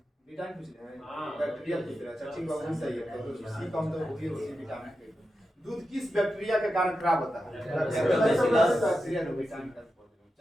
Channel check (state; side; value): normal; both; correlation 0.90